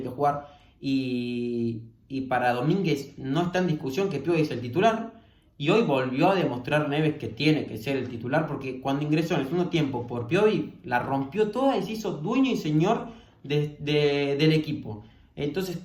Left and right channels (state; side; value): identical; both; correlation 1.00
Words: que jugar. Y para Domínguez no está en discusión que Piovi es el titular. Y hoy volvió a demostrar Neves que tiene que ser el titular, porque cuando ingresó en el segundo tiempo por Piovi, la rompió toda y se hizo dueño y señor del equipo. Entonces